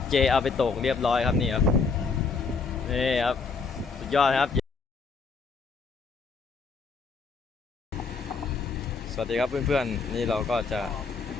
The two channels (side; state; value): right; quieter; 4.8 dB